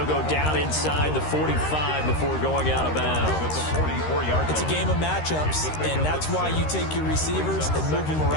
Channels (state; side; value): late; right; 13 ms